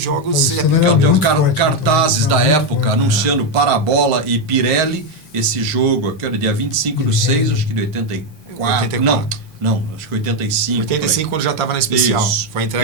Paulistano era Tem muito forte, cartazes né? da Muito época forte, anunciando Parabola e Pirelli, esse jogo, que era dia 25 de 6, acho que de 84. 84. Não, acho que 85. 85, quando já estava na especial. Isso. Foi a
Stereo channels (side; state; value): both; normal; correlation 0.06